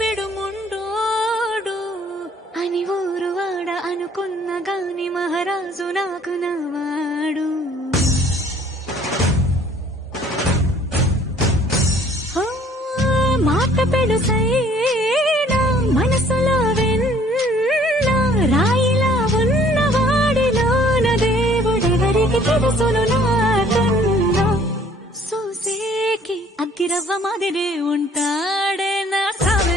అని ఊరు వాడ అనుకున్న గాని మహారాజు నాకు నవ్వాడు. మాట పెడుసైనా మనసులో వెన్న రాయిలా ఉన్నవాడిలోన దేవుడెవరికి తెలుసును నాకన్నా. సూసేకి అగ్గిరవ్వ మాదిరి ఉంటాడే నా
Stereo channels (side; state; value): both; normal; correlation 0.57